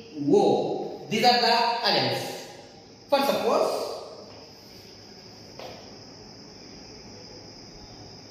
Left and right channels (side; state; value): both; identical; correlation 1.00